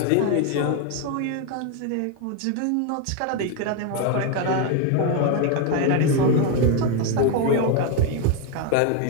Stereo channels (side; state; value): both; different; correlation 0.01